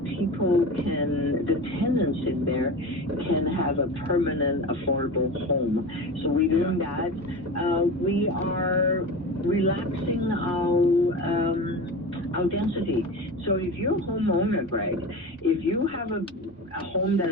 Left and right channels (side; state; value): both; normal; correlation 0.29